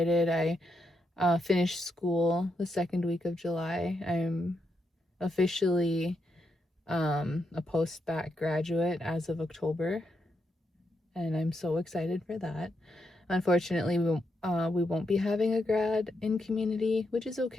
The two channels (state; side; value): normal; both; correlation 0.82